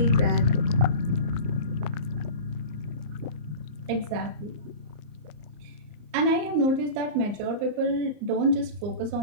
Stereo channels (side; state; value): left; late; 34 ms